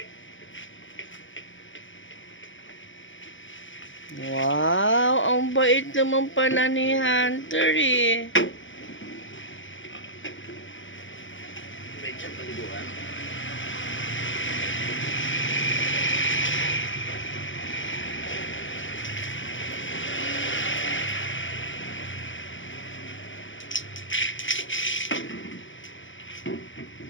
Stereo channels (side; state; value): right; late; 0.56 ms